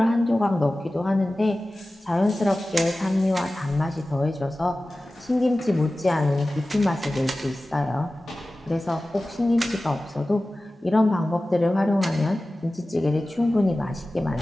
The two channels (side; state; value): both; normal; correlation 0.96